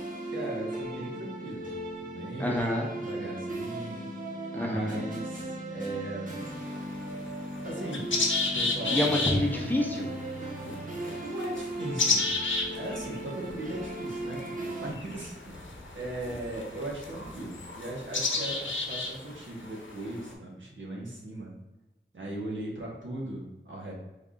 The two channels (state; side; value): normal; both; correlation 0.48